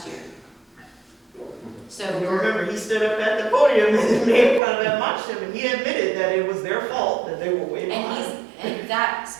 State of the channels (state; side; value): drops out; left; at 4.6 s